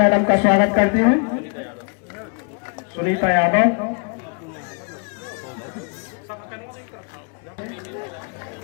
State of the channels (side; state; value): right; quieter; 36.9 dB